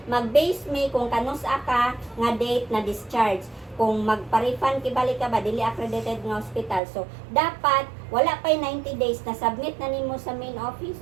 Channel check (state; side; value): drops out; left; at 6.8 s